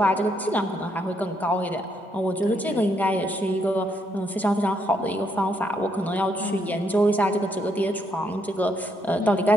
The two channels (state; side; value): normal; both; correlation 0.75